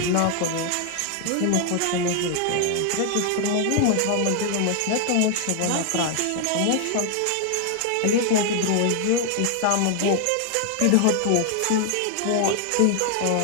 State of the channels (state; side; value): different; both; correlation 0.00